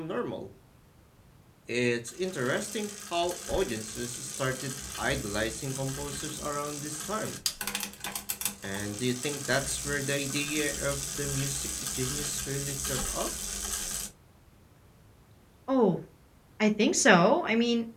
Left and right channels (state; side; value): identical; both; correlation 1.00